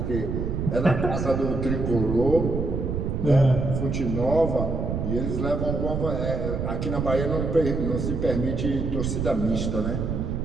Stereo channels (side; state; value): right; noise; rumble, 2 dB below the sound